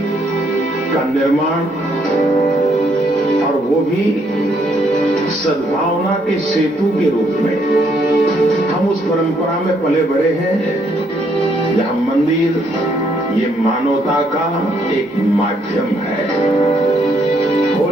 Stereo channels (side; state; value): both; normal; correlation 0.71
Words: का निर्माण और वो भी सद्भावना के सेतु के रूप में, हम उस परंपरा में पले बड़े हैं जहां मंदिर ये मानवता का एक माध्यम है,